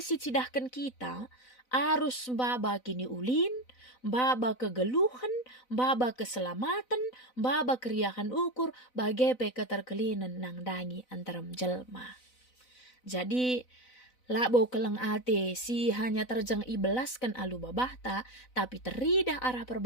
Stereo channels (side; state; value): right; late; 4.0 ms